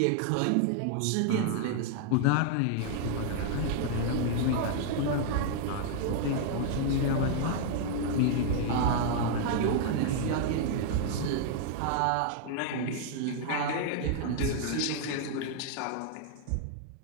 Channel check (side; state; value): both; different; correlation -0.01